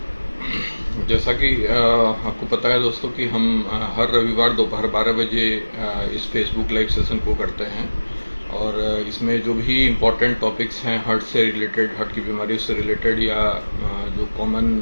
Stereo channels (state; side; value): inverted; both; correlation -1.00